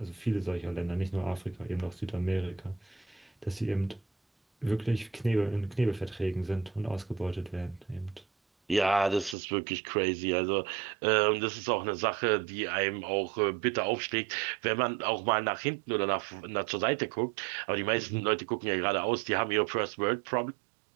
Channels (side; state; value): left; drops out; at 9.3 s